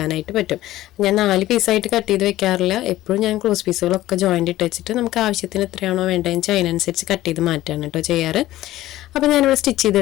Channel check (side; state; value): right; quieter; 15.4 dB